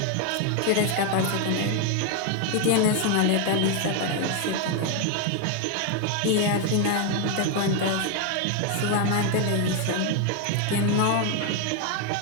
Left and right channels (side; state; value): both; different; correlation 0.01